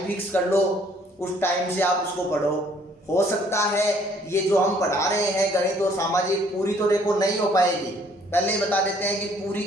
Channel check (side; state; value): both; normal; correlation 0.61